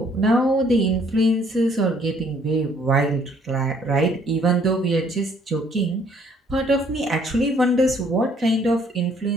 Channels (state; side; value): normal; both; correlation 0.63